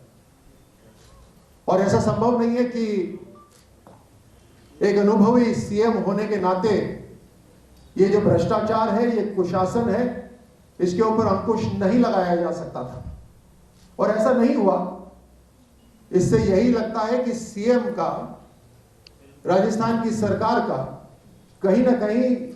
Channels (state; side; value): identical; both; correlation 1.00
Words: और ऐसा संभव नहीं है कि एक अनुभवी सीएम होने के नाते ये जो भ्रष्टाचार है, ये कुशासन है, इसके ऊपर अंकुश नहीं लगाया जा सकता था। और ऐसा नहीं हुआ। इससे यही लगता है कि सीएम का, राजस्थान की सरकार का कहीं ना कहीं